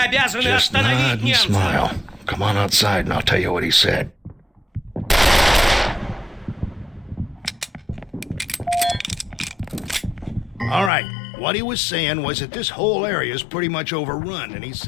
Just nod остановить and немцев. smile. Come on outside and I'll tell you what he said. All right, what he was saying was that this whole area is pretty much overrun, and he's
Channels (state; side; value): drops out; right; at 10.9 s